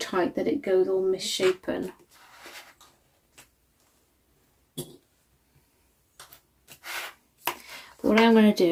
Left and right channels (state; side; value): identical; both; correlation 1.00